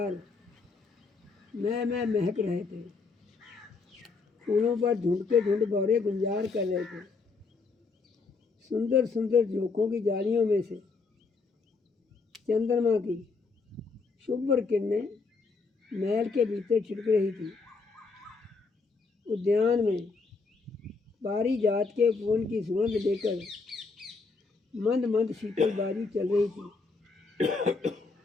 मैं महक रहे थे। फूलों पर ढूंढ के ढूंढ भौरे गुंजार कर रहे थे। सुंदर सुंदर झोंकों की जालियों में से चंद्रमा की शुभ्र किरणें महल के भीतर छिटक रही थी। उद्यान में पारिजात के फूल की सुगंध लेकर मंद मंद शीतल बारी चल रही थी।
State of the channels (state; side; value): quieter; right; 4.3 dB